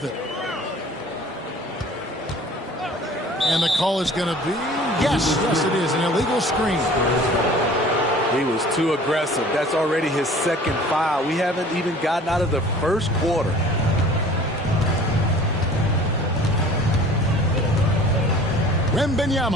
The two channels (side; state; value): both; normal; correlation 0.47